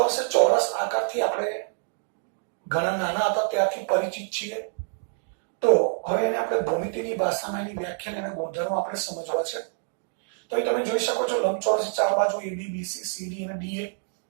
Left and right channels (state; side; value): silent; left; digital silence